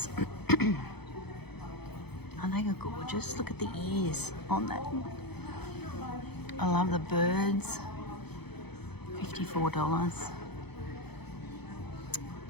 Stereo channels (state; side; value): late; right; 0.98 ms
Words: Aren't they gorgeous? Look at the ears on that. I love the birds. $54.